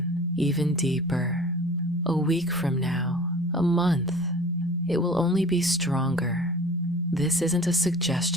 even deeper. A week from now, a month, it will only be stronger. This isn't a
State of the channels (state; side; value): normal; both; correlation 0.43